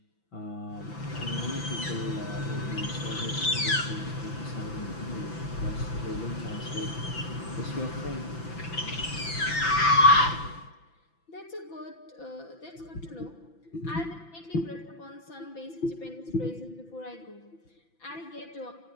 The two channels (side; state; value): right; late; 6.0 ms